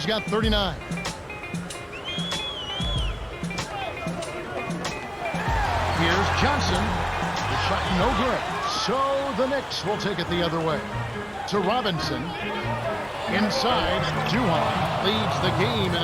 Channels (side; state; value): both; identical; correlation 1.00